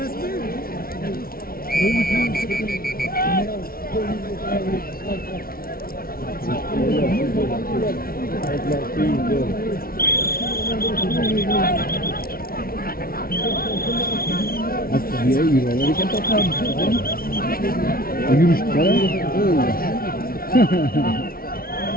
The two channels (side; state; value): right; late; 0.43 ms